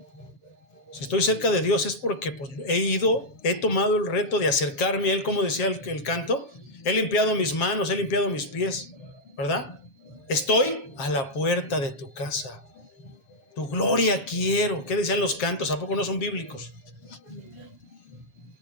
Si estoy cerca de Dios es porque pues, he tomado el reto de acercarme a Él, como decía el canto. He limpiado mis manos, he limpiado mis pies, ¿verdad? Estoy a la puerta de tu casa. Tu gloria quiero. ¿Qué decían los cantos? ¿A poco no son bíblicos?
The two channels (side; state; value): right; late; 7.2 ms